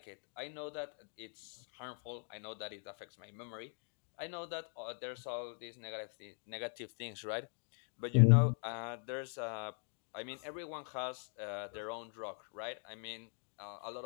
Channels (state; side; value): silent; right; 50 dB below the other